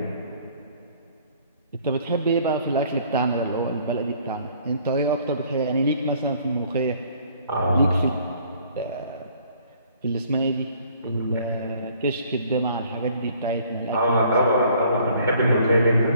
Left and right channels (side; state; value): both; inverted; correlation -0.59